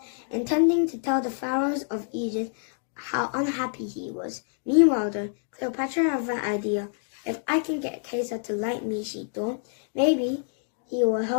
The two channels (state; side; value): silent; right; 60 dB below the other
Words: intending to tell the pharaohs of Egypt how unhappy he was. Meanwhile, though, Cleopatra had an idea. "If I can get Caesar to like me," she thought, "maybe he will